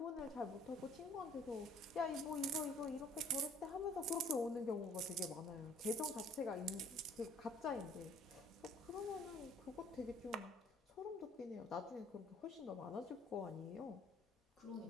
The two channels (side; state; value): both; normal; correlation 0.56